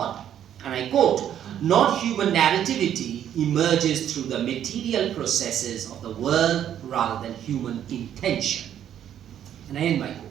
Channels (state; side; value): quieter; left; 10.2 dB